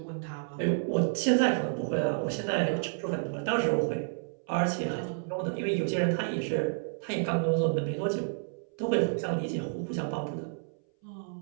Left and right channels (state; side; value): silent; left; 58 dB below the other